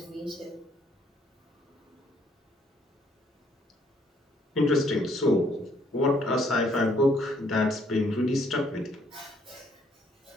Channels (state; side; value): normal; both; correlation 0.66